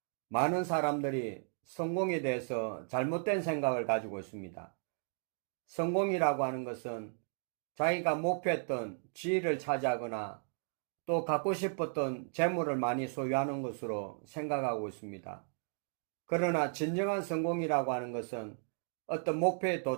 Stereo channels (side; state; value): left; silent; 54 dB below the other